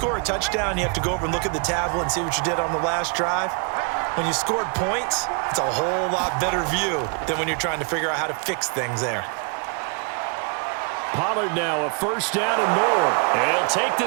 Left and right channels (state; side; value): quieter; left; 34.3 dB